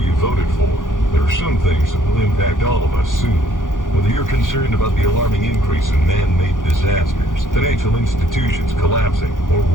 voted for, there are some things that will impact all of us soon. Whether you're concerned about the alarming increase in man-made disasters, financial institutions collapsing, or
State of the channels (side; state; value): right; late; 0.88 ms